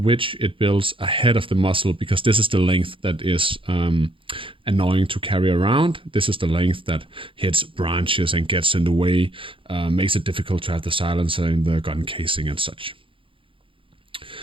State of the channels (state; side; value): late; left; 0.25 ms